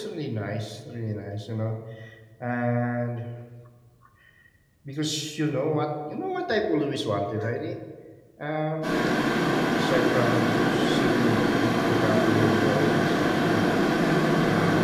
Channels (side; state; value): both; identical; correlation 1.00